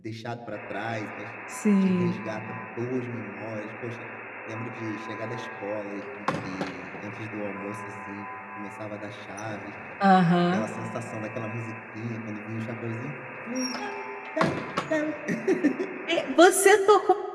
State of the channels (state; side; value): identical; both; correlation 1.00